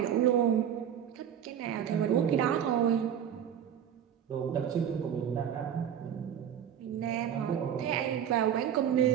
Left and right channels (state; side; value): quieter; left; 9.2 dB